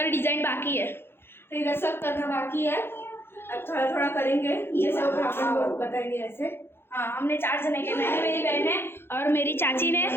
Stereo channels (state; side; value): late; right; 0.11 ms